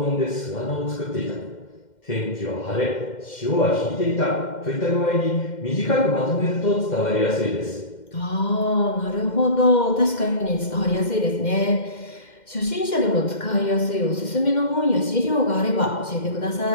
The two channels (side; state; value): right; late; 2.1 ms